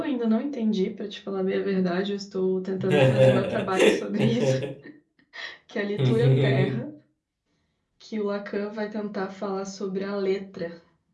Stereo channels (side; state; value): both; identical; correlation 1.00